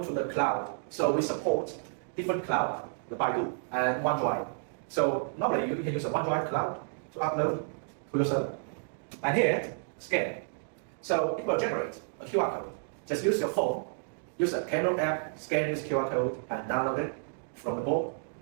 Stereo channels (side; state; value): left; silent; digital silence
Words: to the cloud. So we support different cloud, the Baidu and OneDrive. So normally you can use a OneDrive cloud to upload to your server. And here, scan. So it will generate a QR code. Just use your phone, use a camera app, scan this QR code and download it from the board